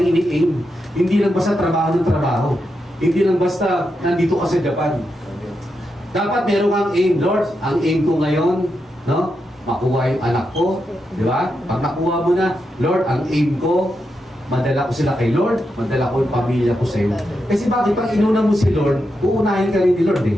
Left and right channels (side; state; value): both; normal; correlation 0.85